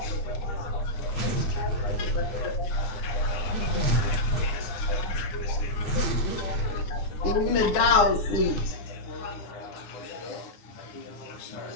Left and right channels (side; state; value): right; late; 9.8 ms